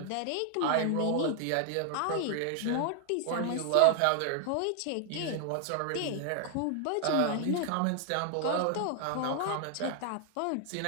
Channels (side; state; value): both; different; correlation 0.00